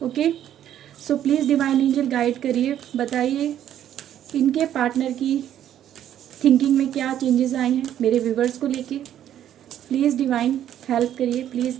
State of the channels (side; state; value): left; quieter; 10.9 dB